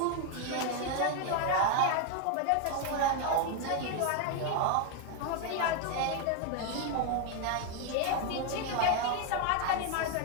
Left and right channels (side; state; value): both; different; correlation 0.01